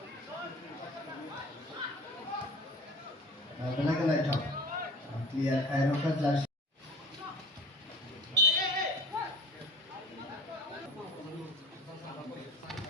Belai kan naik cok liar kai rokan jelas.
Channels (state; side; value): normal; both; correlation 0.42